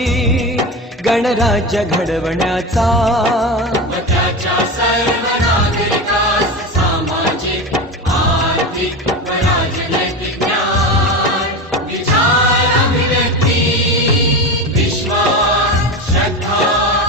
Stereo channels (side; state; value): both; normal; correlation 0.23